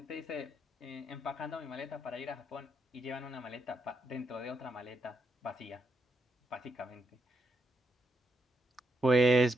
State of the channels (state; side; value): normal; both; correlation 0.82